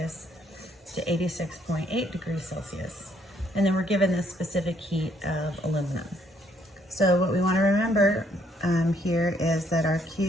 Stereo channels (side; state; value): both; normal; correlation 0.69